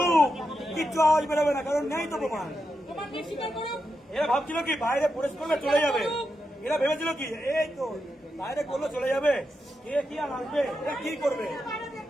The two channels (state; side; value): normal; both; correlation 0.86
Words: কিচ্ছু আওয়াজ বেরোবে না, কারণ নেই তো প্রমাণ। এরা ভাবছিল কি বাইরে প্রবেশ করলে চলে যাবে, এরা ভেবেছিল কি এই তো বাইরে করলে চলে যাবে, কে কি আর আসবে, এরা কি করবে।